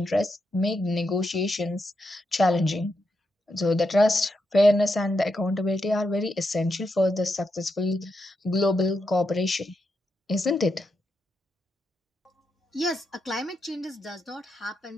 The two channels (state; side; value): normal; both; correlation 0.84